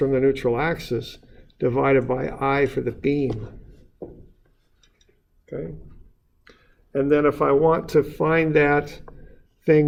the neutral axis, divided by I for the beam. Okay. And then if I want to find that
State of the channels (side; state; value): both; identical; correlation 1.00